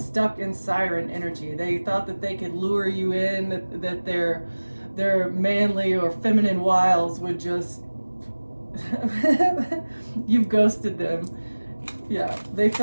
in siren energy. They thought that they could lure you in, that their manly or feminine wiles would just, you've ghosted them. Yeah, they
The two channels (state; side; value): inverted; both; correlation -1.00